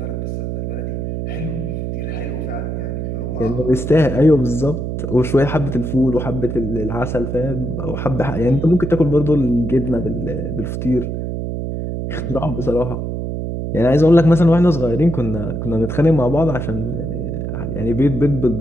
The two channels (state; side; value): noise; right; hum, 4 dB below the sound